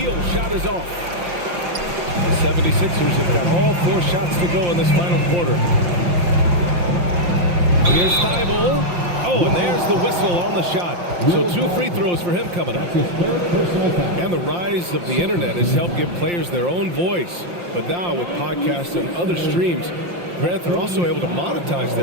shot is off. The 76ers have got all 4 shots to go in this final quarter. Here's Thibault. Oh, and there's the whistle on the shot. So 2 free throws for him coming up. And the rise of the internet has helped give players their own voice. But now with podcasts and other streams, Grant, they're also able to monetize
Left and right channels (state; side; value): late; left; 5.7 ms